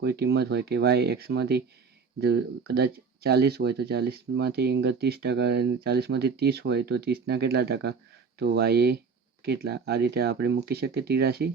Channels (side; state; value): left; quieter; 5.3 dB